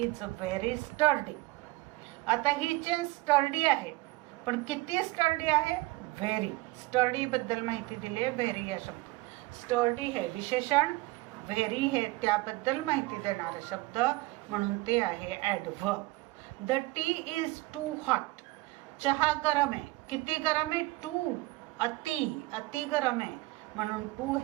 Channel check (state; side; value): quieter; left; 21.5 dB